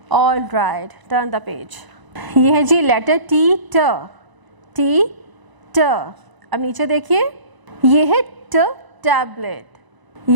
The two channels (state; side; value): late; left; 1.0 ms